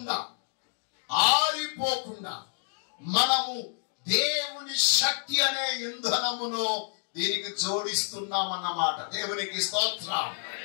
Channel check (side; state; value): right; silent; digital silence